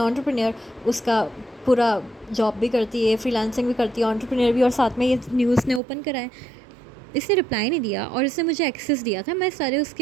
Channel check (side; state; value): left; drops out; at 5.8 s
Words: उसका पूरा जॉब भी करती है, फ्रीलांसिंग भी करती है, एंटरप्रेन्योर भी, और साथ में ये न्यूज़ ने ओपन करा है। इसने रिप्लाई नहीं दिया और इसने मुझे एक्सेस दिया था, मैं सारे